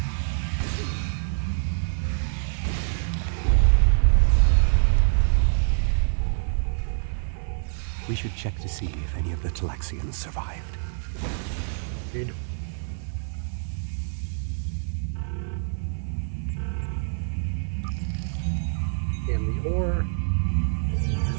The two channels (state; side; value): silent; left; 56 dB below the other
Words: We should check to see if any of the Talaxians survived. Agreed. And the ore.